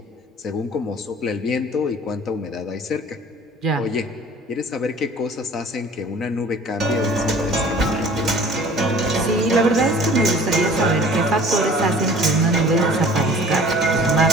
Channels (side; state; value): both; normal; correlation 0.48